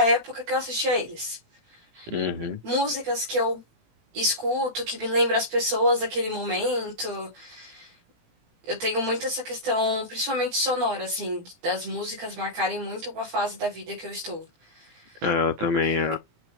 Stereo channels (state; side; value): late; left; 18 ms